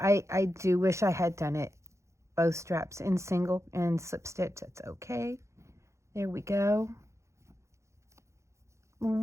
do wish I had done it both straps in single and slip stitch. That's okay. There we go.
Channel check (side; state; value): left; late; 0.14 ms